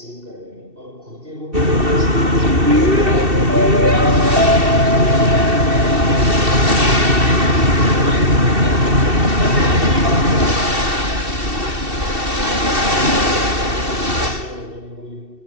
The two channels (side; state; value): left; late; 2.7 ms